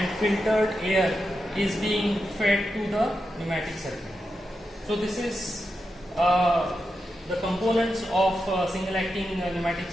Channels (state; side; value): normal; both; correlation 0.88